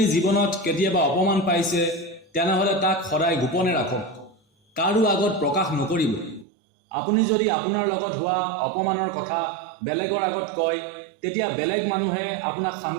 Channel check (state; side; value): drops out; left; at 6.5 s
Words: জীৱনত কেতিয়াবা অপমান পাইছে তেনেহ'লে তাক সদায় গোপনে ৰাখক, কাৰো আগত প্ৰকাশ নকৰিব। আপুনি যদি আপোনাৰ লগত হোৱা অপমানৰ কথা বেলেগৰ আগত কয় তেতিয়া বেলেগ মানুহে আপোনাক